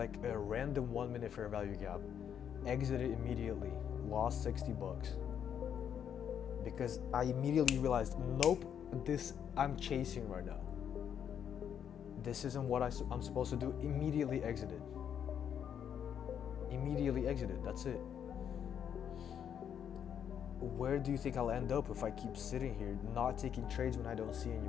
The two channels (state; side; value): quieter; right; 8.6 dB